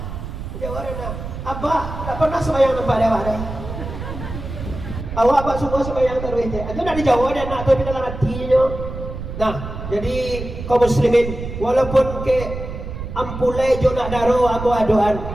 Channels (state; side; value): noise; right; rumble, 8 dB below the sound